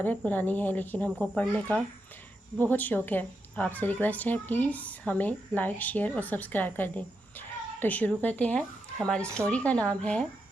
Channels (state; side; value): normal; both; correlation 0.85